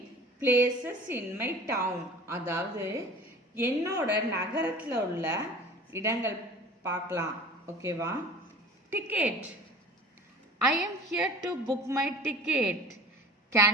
Places in my town. அதாவது என்னோட நகரத்துல உள்ள இடங்கள் பார்க்கலாம். ஓகேவா? Ticket. I am here to book my ticket. Can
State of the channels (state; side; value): normal; both; correlation 0.42